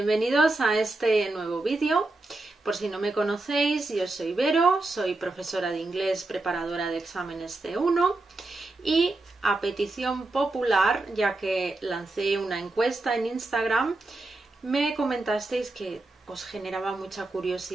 a este nuevo vídeo. Por si no me conocéis, yo soy Vero, soy profesora de inglés, preparadora de exámenes C1 y a petición popular, ya que lancé una encuesta en Instagram, me comentasteis que os generaba mucha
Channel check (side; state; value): left; quieter; 3.0 dB